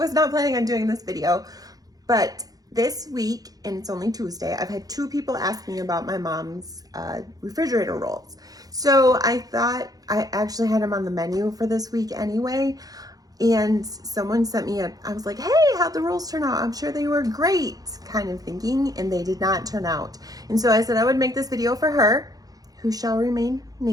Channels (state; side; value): late; left; 0.18 ms